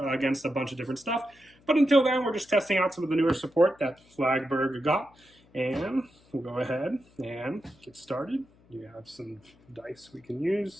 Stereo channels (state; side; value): noise; left; hum, 29 dB below the sound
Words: a bunch of different stuff. But until then, we're just testing out some of the newer support that Flagburg got, and we'll go ahead and get started. You have some dice we can